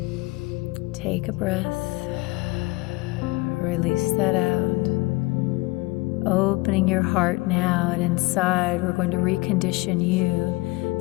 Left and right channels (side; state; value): right; quieter; 23.0 dB